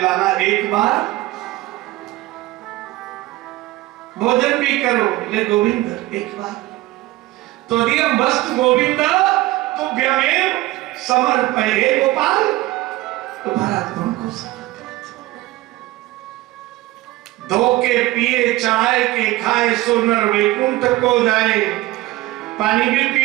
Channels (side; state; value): left; quieter; 18.1 dB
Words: एक बार। भोजन भी करो, ले गोविंद एक बार। त्वदीयं वस्तु गोविंद तुभ्यमेव समर्पये गोपाल। तो भरत उनको धोके पिए चढ़ाए के खाए सो नर वैकुंठ को जाए। पानी भी